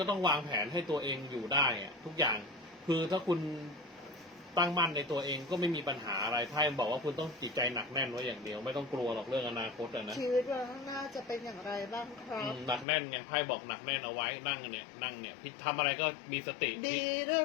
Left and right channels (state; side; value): drops out; right; at 12.9 s